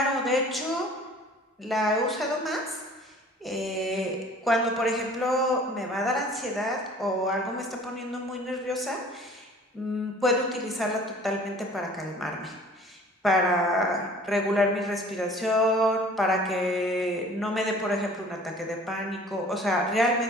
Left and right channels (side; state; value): both; normal; correlation 0.49